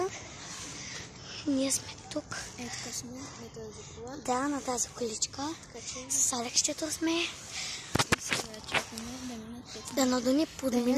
Ние сме тук. Ето сме на тази кола. Да, на тази количка. С Алексчето сме. И сега чакаме да минат 5. Да надуни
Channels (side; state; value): both; identical; correlation 1.00